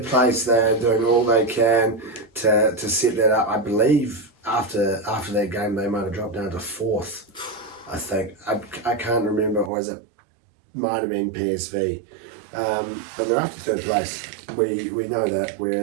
place. They're doing all they can to set that up. I believe after that game they might have dropped down to 4th. I think I can't remember, or might have been PSV. But they're after 3rd place. We know that.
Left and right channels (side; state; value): left; drops out; at 9.7 s